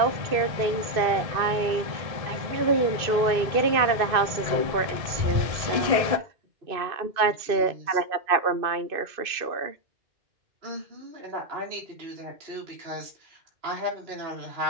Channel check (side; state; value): left; late; 2.6 ms